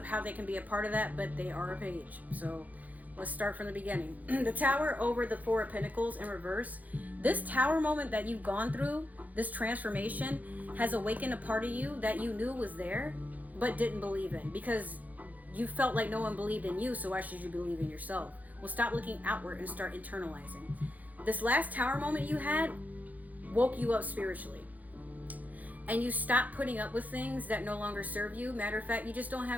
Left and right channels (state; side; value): late; left; 0.079 ms